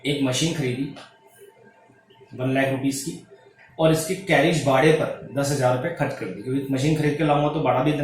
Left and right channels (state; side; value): identical; both; correlation 1.00